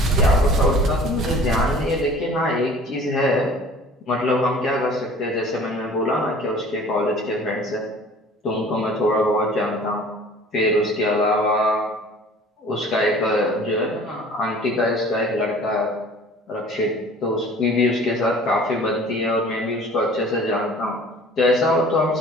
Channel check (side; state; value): both; normal; correlation 0.47